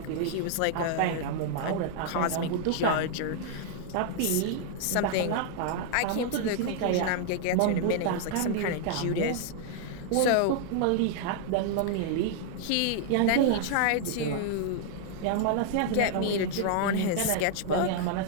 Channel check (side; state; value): both; different; correlation 0.00